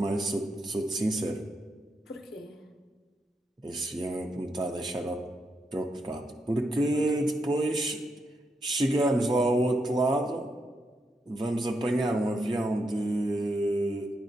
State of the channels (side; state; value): both; normal; correlation 0.82